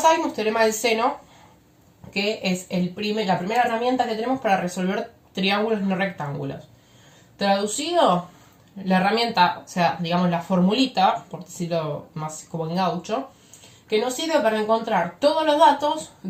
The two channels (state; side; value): identical; both; correlation 1.00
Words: vimos teorema del seno, que es la primera herramienta que tenemos para resolver triángulos no rectángulos. Traducido, la herramienta, o sea, digamos la formulita, por decirlo más como en gaucho, que nos sirve para encontrar todos los datos